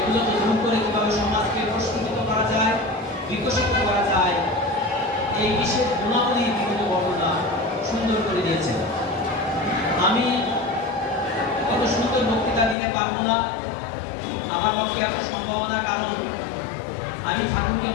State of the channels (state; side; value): drops out; right; at 12.8 s